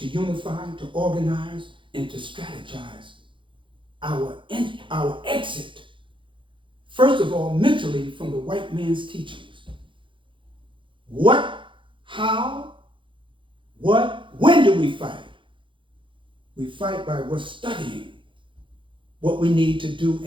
unify, to organize, and to strategize our exit. First of all, mentally from the white man's teachings. What, how, what, when do we fight? We fight by we're studying what we need to do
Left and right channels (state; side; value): late; left; 0.24 ms